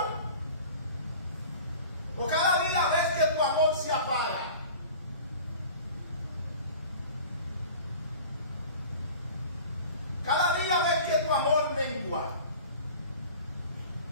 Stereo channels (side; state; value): both; inverted; correlation -0.41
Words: ¿O cada día ves que tu amor se apaga? Cada día ves que tu amor mengua.